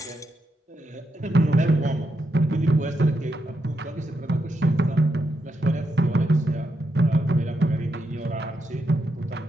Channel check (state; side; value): normal; both; correlation 0.83